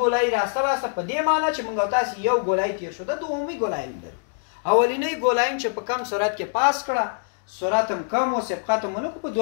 راسته لاسته په دې معنی چې موږ تاسو یو ګولایي تیر شو، دا دومي ګولایي لري. اولینی ګولایي چې په کم سرعت کې پاس کړه، سرعت هم کم او سبقت هم ونه کړو، په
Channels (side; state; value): right; silent; digital silence